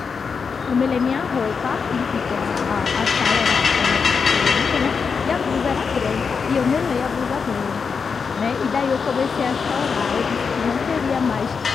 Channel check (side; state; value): right; quieter; 5.6 dB